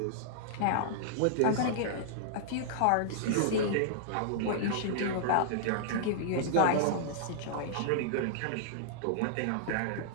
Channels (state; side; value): different; both; correlation -0.01